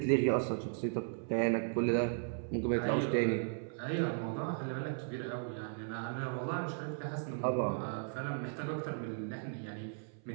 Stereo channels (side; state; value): left; silent; 54 dB below the other